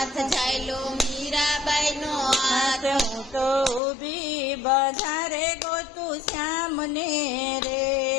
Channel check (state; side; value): drops out; right; at 3.8 s